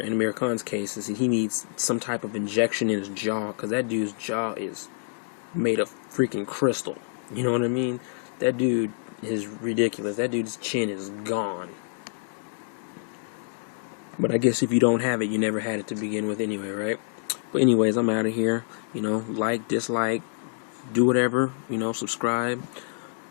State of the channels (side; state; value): right; silent; digital silence